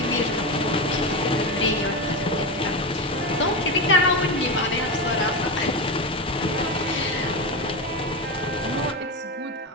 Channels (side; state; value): both; normal; correlation 0.17